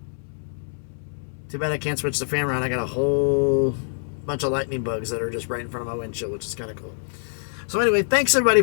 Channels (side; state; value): right; silent; 62 dB below the other